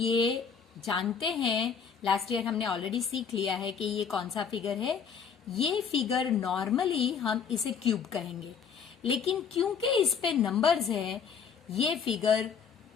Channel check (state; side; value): quieter; right; 6.6 dB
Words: जानते हैं, लास्ट ईयर हमने ऑलरेडी सीख लिया है कि ये कौन सा फिगर है। ये फिगर नॉर्मली हम इसे क्यूब कहेंगे, लेकिन क्योंकि इस पे नंबर्स है, ये फिगर